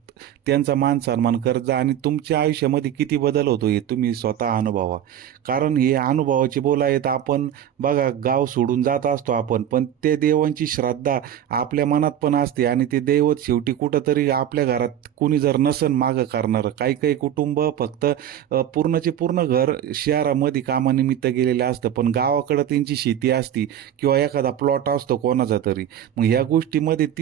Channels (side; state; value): left; quieter; 10.2 dB